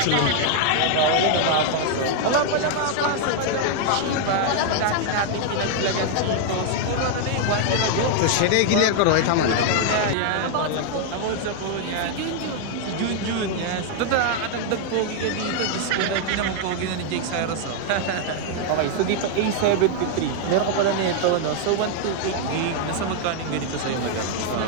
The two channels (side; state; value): both; different; correlation 0.00